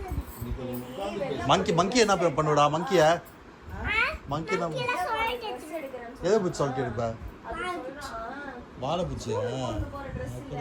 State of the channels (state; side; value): identical; both; correlation 1.00